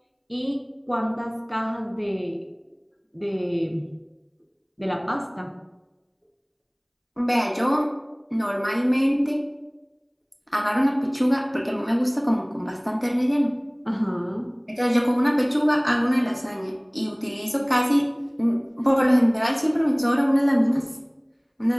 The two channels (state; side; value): identical; both; correlation 1.00